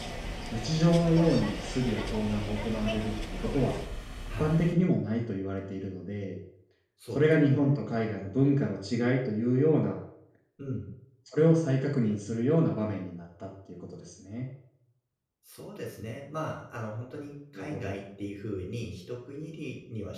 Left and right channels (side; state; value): both; identical; correlation 1.00